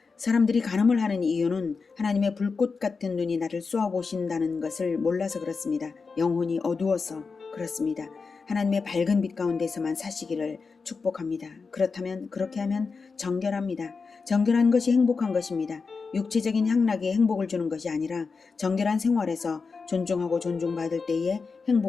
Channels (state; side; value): quieter; right; 4.7 dB